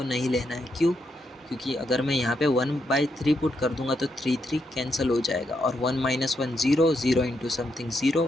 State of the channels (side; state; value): both; normal; correlation 0.80